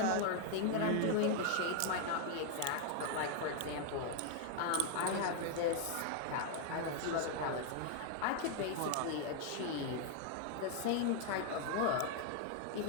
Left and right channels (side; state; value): both; different; correlation 0.00